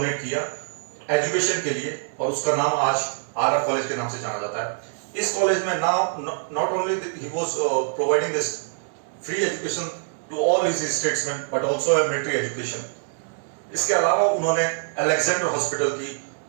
किया एजुकेशन के लिए और उसका नाम आज आरआर कॉलेज के नाम से जाना जाता है। इस कॉलेज में not only he was providing this free education to all his statesman but also a military education. इसके अलावा उन्होंने अलेक्जेंडर हॉस्पिटल की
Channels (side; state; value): left; silent; digital silence